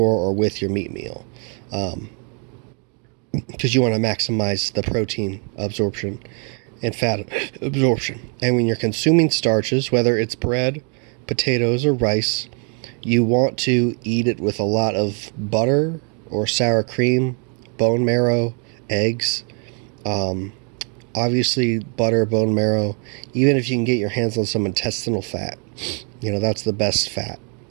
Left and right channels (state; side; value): quieter; left; 39.2 dB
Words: or with your meat meal, because you want to maximize the protein absorption and fat absorption. And when you're consuming starches, whether it's bread, potatoes, or rice, you want to eat it with a lot of butter or sour cream, bone marrow, eggs. Obviously, butter, bone marrow. Even if you can get your hands on some intestinal fat, that's the best fat,